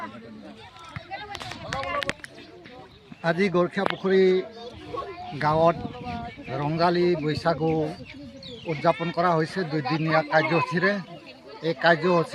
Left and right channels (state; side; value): identical; both; correlation 1.00